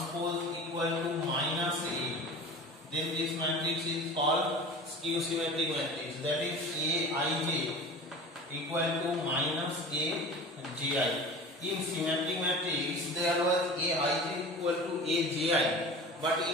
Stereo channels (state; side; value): normal; both; correlation 0.37